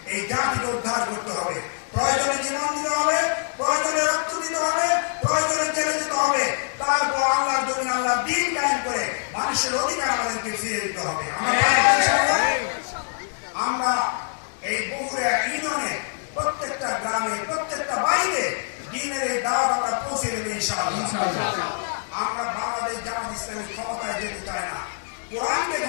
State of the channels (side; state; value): right; silent; digital silence